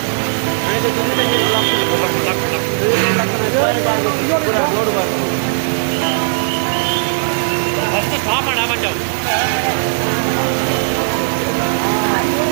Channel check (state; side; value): silent; left; digital silence